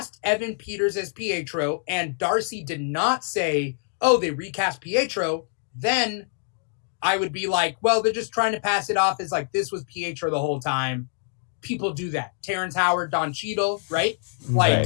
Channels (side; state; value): right; silent; digital silence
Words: Evan Peters as Pietro and Darcy did not say, oh, they recast Pietro, then I would be like, well, they're just trying to pass it off as like this was Pietro the whole time. People do that. Terrence Howard, Don Cheadle, right? Like,